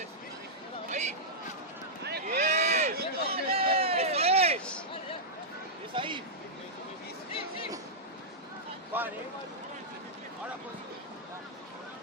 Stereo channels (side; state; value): both; normal; correlation -0.09